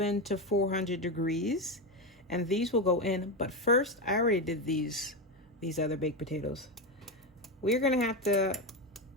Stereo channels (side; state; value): both; normal; correlation 0.13